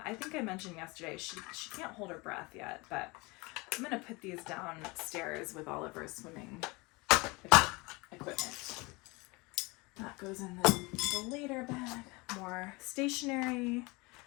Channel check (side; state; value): right; quieter; 25.3 dB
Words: I think I mentioned yesterday she can't hold her breath yet, but I'm gonna put these downstairs with all of her swimming equipment. That goes in the later bag. More stationery,